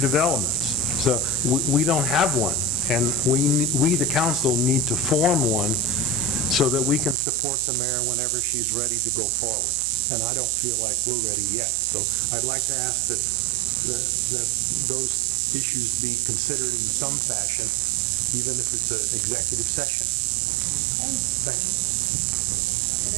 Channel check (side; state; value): left; drops out; at 7.2 s